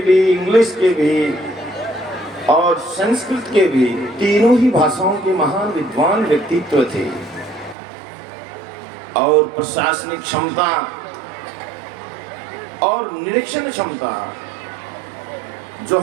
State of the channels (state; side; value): drops out; left; at 7.8 s